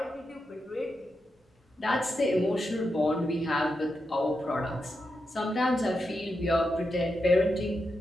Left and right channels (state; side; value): normal; both; correlation 0.86